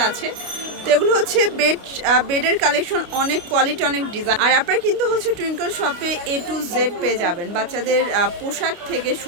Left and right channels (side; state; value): left; late; 29 ms